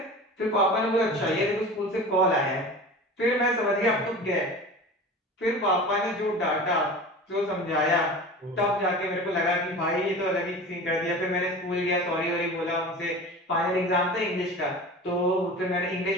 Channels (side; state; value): both; normal; correlation 0.35